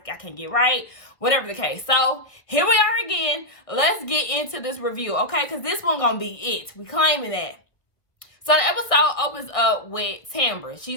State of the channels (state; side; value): late; right; 1.4 ms